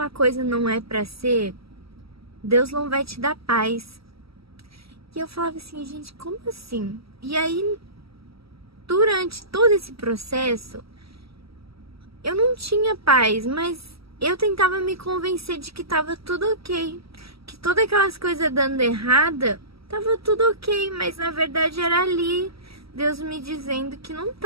coisa não é pra ser, Deus não vai te dar paz. E eu falava assim, gente, como assim? E aí, durante todo esse processo, eu não tinha paz, mas eu tentava me convencer de que tava tudo ok. Que todas aquelas coisas dando errada, tava tudo ok, mas na verdade era ali Deus me dizendo que não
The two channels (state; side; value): late; left; 0.76 ms